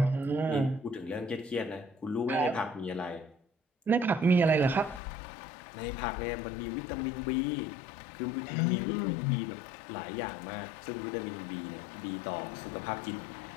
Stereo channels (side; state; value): right; drops out; at 5.0 s